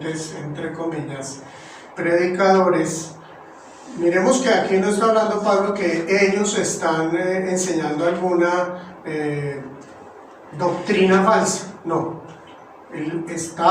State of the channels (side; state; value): both; identical; correlation 1.00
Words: entre comillas, predicadores. Miremos que aquí no está hablando Pablo que ellos están enseñando alguna doctrina falsa, no. Él